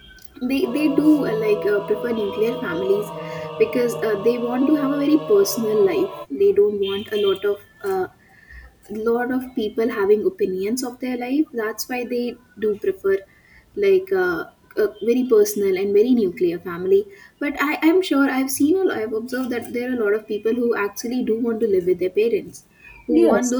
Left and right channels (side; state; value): both; identical; correlation 1.00